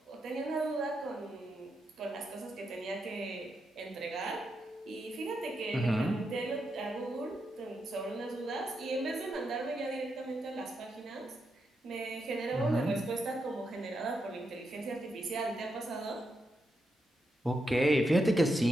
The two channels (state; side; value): normal; both; correlation 0.84